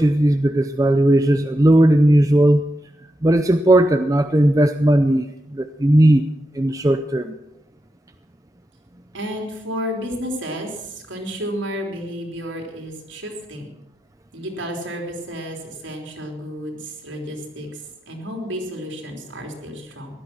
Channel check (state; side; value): normal; both; correlation 0.87